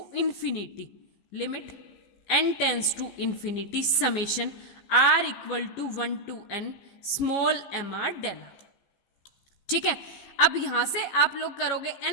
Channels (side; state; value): right; late; 15 ms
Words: infinity, limit n tends to infinity summation r equal to 1 to n small mr del. ठीक है, अब यहां से आप लोग करोगे